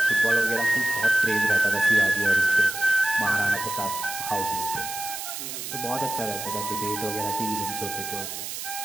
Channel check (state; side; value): noise; right; hiss, 7 dB below the sound